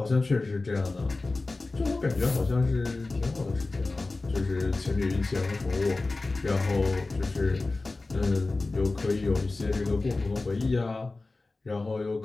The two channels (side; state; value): right; quieter; 3.4 dB